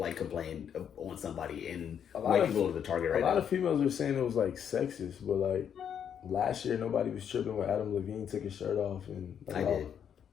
complain on somebody, and white people are the target right now. A lot of females were saying it was like sexist, but like last year nobody was tripping when Adam Levine took his shirt off and like, I did.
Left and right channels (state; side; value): quieter; right; 8.4 dB